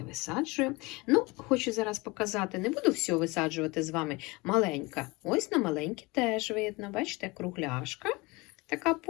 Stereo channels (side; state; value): right; quieter; 24.3 dB